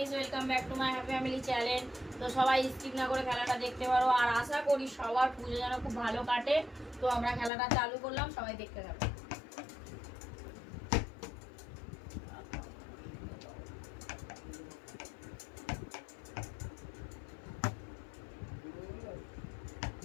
welcome back to my happy family channel. তো সবাই skip না করে খেলাটা দেখতে পারো, আর আশা করি সবার পুজো যেন খুব ভালো কাটে। তো আমরা খেলাটা চালু করলাম, সবাই দেখতে থাকো।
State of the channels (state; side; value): drops out; right; at 7.5 s